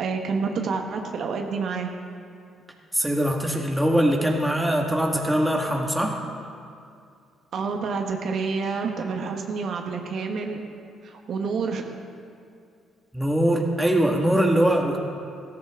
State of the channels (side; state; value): both; normal; correlation 0.85